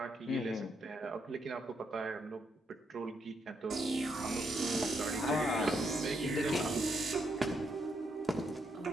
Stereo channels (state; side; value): normal; both; correlation 0.78